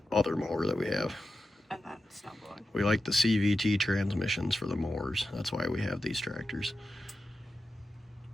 other mower that we have. And then snow blowing. We like the CVT transmissions for the mowers. That's why we have these tractors.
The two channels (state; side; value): normal; both; correlation 0.91